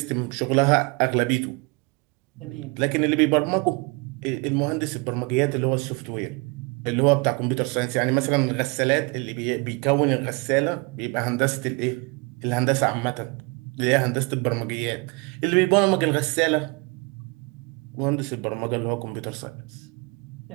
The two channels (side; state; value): left; quieter; 29.3 dB